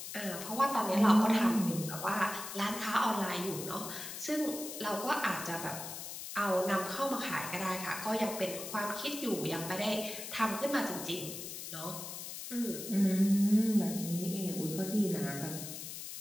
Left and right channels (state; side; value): noise; left; hiss, 8 dB below the sound